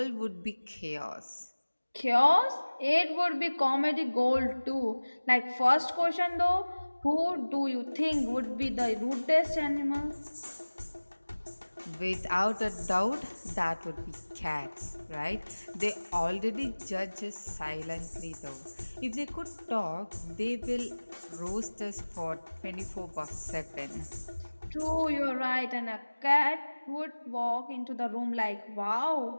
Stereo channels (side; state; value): both; inverted; correlation -1.00